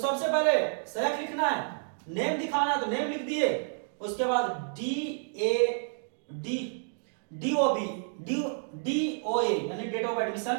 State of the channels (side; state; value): left; silent; digital silence